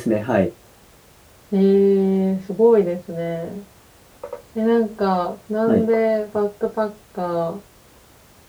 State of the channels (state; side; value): identical; both; correlation 1.00